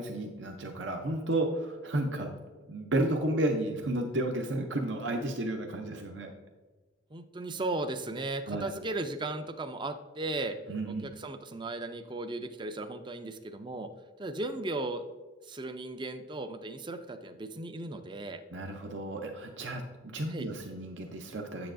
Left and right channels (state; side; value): normal; both; correlation 0.42